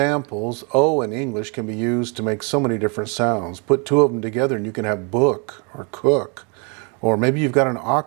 O in English can be used to make so many different sounds. Put two of them together and you can have book or cook, or maybe you've got an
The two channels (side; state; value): left; quieter; 34.0 dB